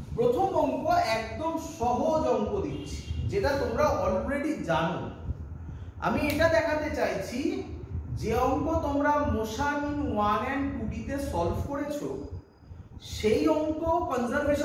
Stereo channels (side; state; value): both; identical; correlation 1.00